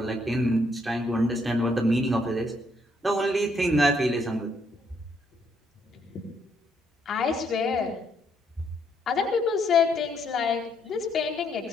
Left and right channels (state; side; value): normal; both; correlation 0.72